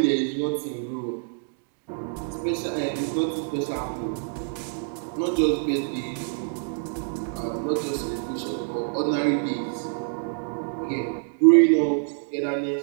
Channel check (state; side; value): silent; left; 61 dB below the other